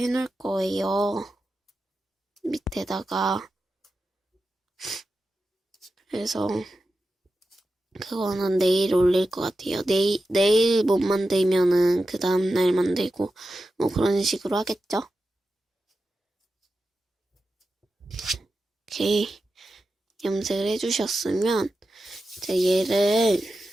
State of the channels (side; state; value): both; normal; correlation 0.91